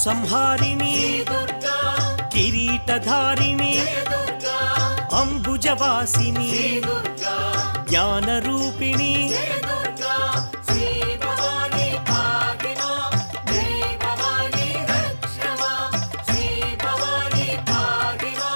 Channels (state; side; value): inverted; both; correlation -1.00